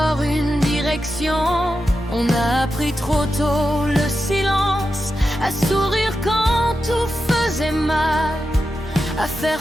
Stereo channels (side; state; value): both; normal; correlation 0.90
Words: une direction. On a appris trop tôt le silence, à sourire quand tout faisait mal, à